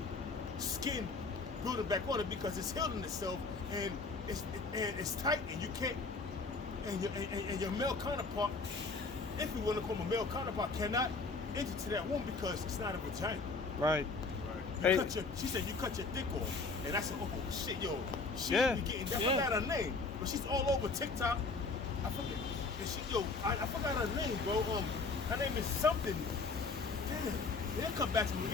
skin building back on it because it's healing itself and it's tight and you can't and your male counterpart, if you want to call him a male counterpart, cannot enter to that womb because it's not a vagina. Right. She said you cut your dick off, and I said, oh shit, yo, she be getting that. I forgot her name, but she's all over TikTok. I forget. I forgot her name, bro. Her name is something. Damn, they'll come back to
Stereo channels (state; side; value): quieter; right; 4.1 dB